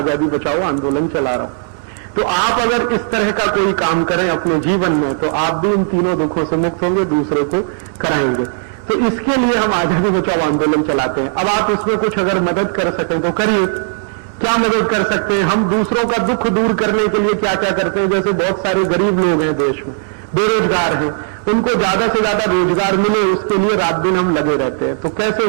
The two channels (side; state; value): left; silent; digital silence